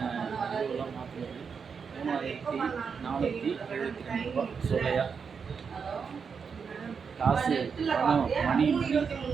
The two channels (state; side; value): quieter; left; 6.0 dB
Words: இதுவெல்லாம் மாற்றினது. 3472 ரூபா சொல்லையா. காசு பணம் மணி